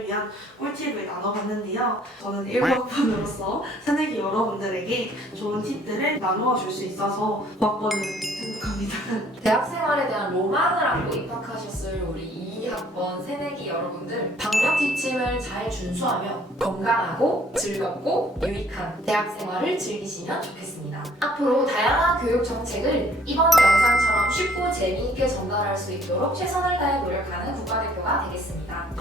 위한 꿀팁을 나눠봤는데요. 저는 1학번으로서 새내기 여러분들에게 좋은 팁들을 나누어 줄 수 있어서 고학번을 행복합니다. 대학 생활에 대한 로망을 안고 입학하셨을 우리 2학번 새내기 여러분들 방역 지침을 잘 준수하며 건강하고 즐겁고 유익한 대학 생활을 즐기시면 좋겠습니다. 앞으로 다양한 교육 정책을 이번 영상처럼 쉽고 재미있게 전달할 수 있도록 최선을 다해 노력하는 국가대표가 되겠습니다.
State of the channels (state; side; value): normal; both; correlation 0.59